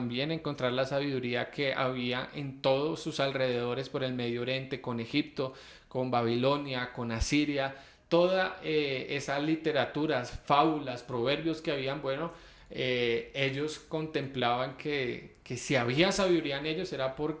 encontrar la sabiduría que había en todos sus alrededores por el Medio Oriente, con Egipto, con Babilonia, con Asiria, toda esas literaturas, fábulas, proverbios que habían, bueno, ellos contemplaban que si había sabiduría en ellos era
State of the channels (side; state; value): both; identical; correlation 1.00